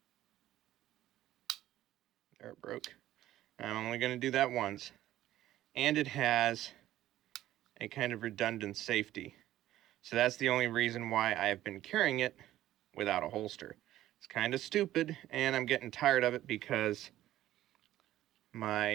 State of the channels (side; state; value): left; quieter; 14.0 dB